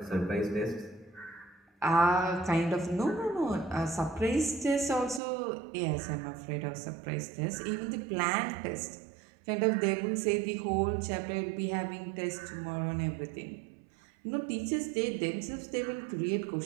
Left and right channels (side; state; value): left; drops out; at 5.2 s